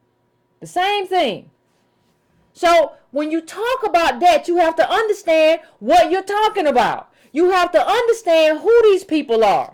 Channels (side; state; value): both; identical; correlation 1.00